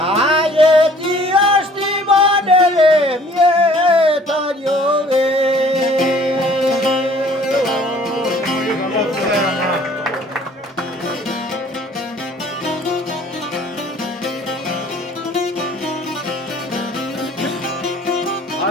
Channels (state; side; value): normal; both; correlation 0.54